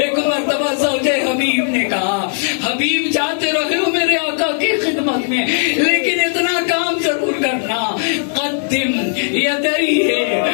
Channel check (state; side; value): silent; right; digital silence